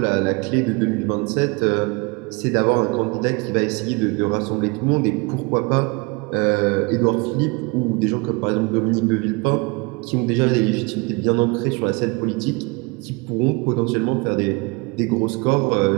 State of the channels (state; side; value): quieter; left; 28.3 dB